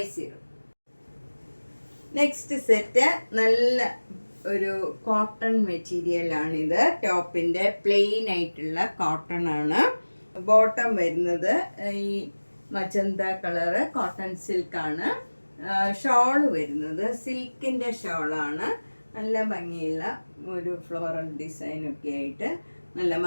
നെക്സ്റ്റ് സെറ്റ് നല്ല ഒരു കോട്ടൺ മെറ്റീരിയലാണിത്. ടോപ്പിൻ്റെ പ്ലെയിൻ ആയിട്ടുള്ള കോട്ടൺ ആണ്. ബോട്ടം വരുന്നത് ഈ മജന്ത കളറ് കോട്ടൺ സിൽക്കാണ്. ഷോള് വരുന്നത് സിൽക്കിൻ്റെ ഷോളാണ്. നല്ല ഭംഗിയുള്ള ഒരു ഫ്ലോറൽ ഡിസൈനൊക്കെ ആയിട്ട് നല്ല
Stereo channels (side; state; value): both; inverted; correlation -1.00